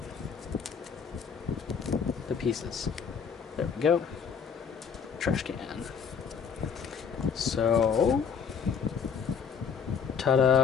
the pieces. There we go. Trash can. So,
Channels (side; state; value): right; quieter; 6.6 dB